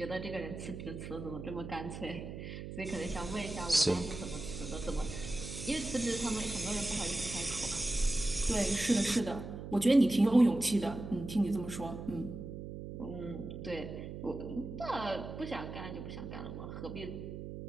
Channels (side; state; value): right; noise; hum, 8 dB below the sound